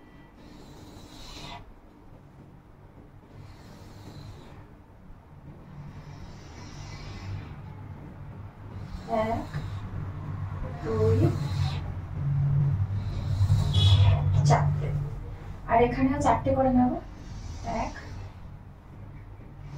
আর এখানেও 4টে করে নেব। 1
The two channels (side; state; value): both; identical; correlation 1.00